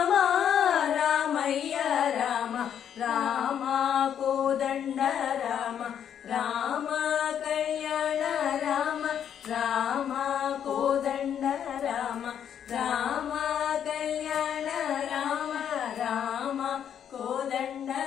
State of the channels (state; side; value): quieter; right; 9.0 dB